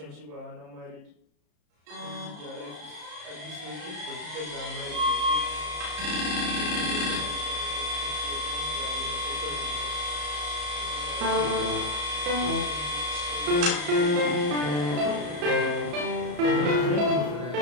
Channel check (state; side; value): late; left; 34 ms